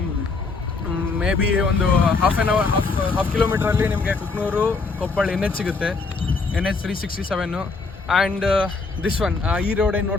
ಮೇ ಬಿ ಒಂದು ಹಾಫ್ ಕಿಲೋಮೀಟ್ರಲ್ಲಿ ನಿಮಗೆ ಕುಕ್ನೂರು ಕೊಪ್ಪಳ NH ಸಿಗುತ್ತೆ, NH 367. ಆ್ಯಂಡ್ ದಿಸ್ ಒನ್, ಈ ರೋಡ್ ಏನು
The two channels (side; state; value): right; quieter; 4.2 dB